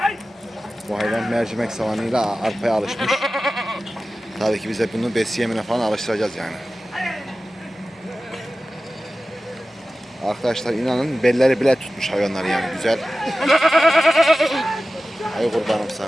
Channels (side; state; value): both; normal; correlation 0.95